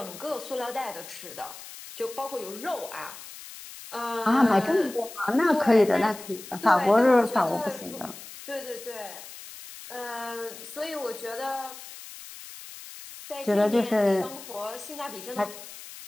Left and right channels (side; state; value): left; noise; hiss, 15 dB below the sound